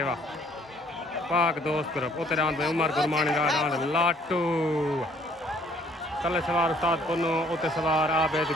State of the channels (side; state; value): both; normal; correlation 0.61